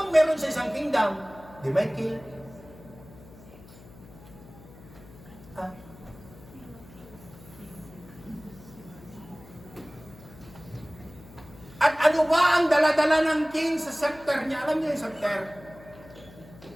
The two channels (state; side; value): noise; left; hum, 20 dB below the sound